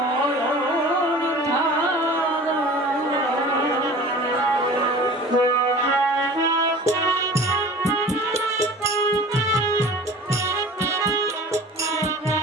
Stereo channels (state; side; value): normal; both; correlation 0.41